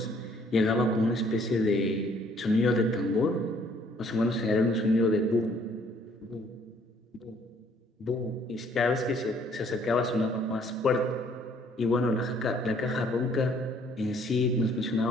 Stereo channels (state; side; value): normal; both; correlation 0.62